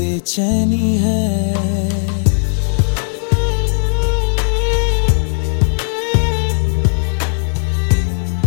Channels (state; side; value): silent; right; digital silence